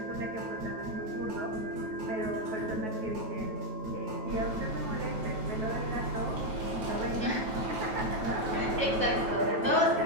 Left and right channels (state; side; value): late; left; 9.2 ms